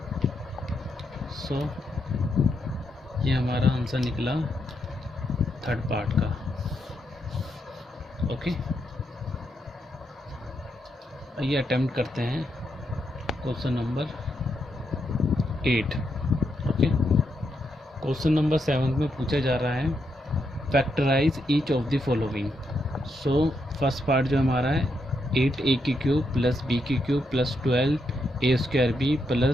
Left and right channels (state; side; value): normal; both; correlation 0.81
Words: सो ये हमारा आंसर निकला थर्ड पार्ट का। ओके, आइए अटेम्प्ट करते हैं question number 8। Okay, question number 7 में पूछा जा रहा है factorise each of the following. So first part जो हमारा है 8a की क्यूब प्लस b की cube plus 12a square b